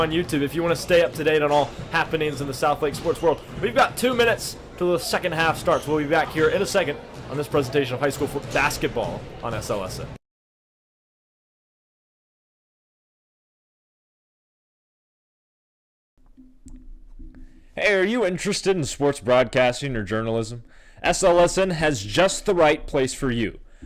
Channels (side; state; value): both; identical; correlation 1.00